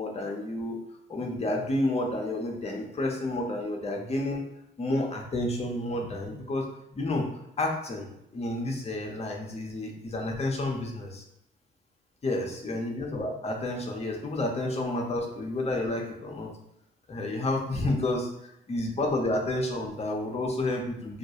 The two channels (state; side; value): normal; both; correlation 0.62